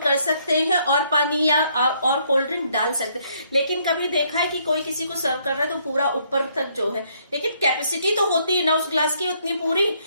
कर सकते हैं और पानी या और कोल्ड ड्रिंक डाल सकते हैं। लेकिन कभी देखा है कि कोई किसी को सर्व कर रहा है तो पूरा ऊपर तक जो है, लेकिन कैपेसिटी तो होती है ना उस ग्लास की उतनी पूरी।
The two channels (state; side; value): inverted; both; correlation -0.69